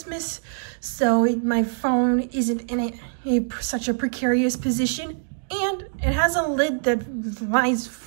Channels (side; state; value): left; silent; digital silence